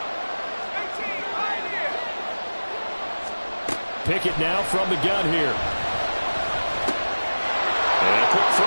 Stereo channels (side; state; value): both; inverted; correlation -1.00